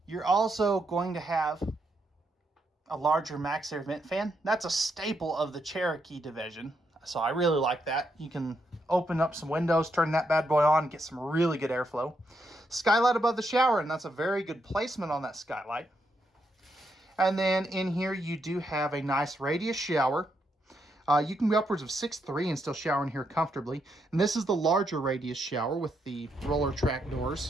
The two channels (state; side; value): normal; both; correlation 0.79